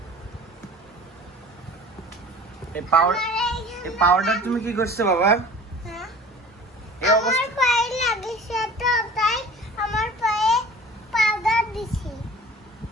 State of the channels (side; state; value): both; normal; correlation 0.43